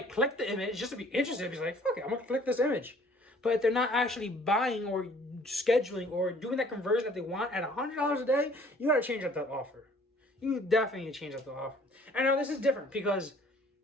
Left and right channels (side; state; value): both; normal; correlation 0.56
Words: click the image just to be interested. Be like, fuck it, I'm going to click this image. But if they're not actually buying or scheduling or doing that conversion that they want at $100 a day, you got to change up that offer. You definitely need to change up the offer. I know this is different because